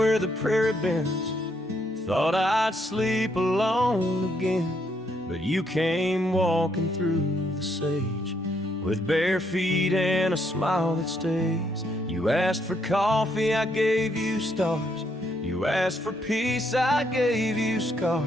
the prairie bends, thought I'd sleep alone again, but you came walking through the sage with bare feet and a smile that stays. You asked for coffee, I gave you stars. You asked for peace, I gave you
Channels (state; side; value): normal; both; correlation 0.74